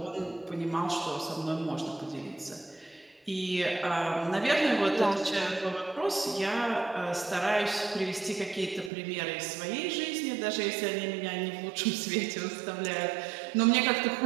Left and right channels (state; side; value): drops out; left; at 8.9 s